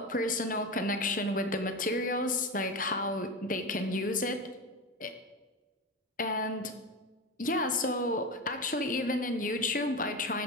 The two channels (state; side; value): normal; both; correlation 0.22